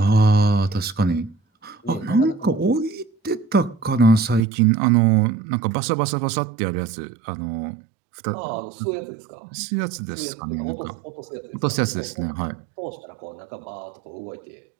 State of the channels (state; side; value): drops out; left; at 4.4 s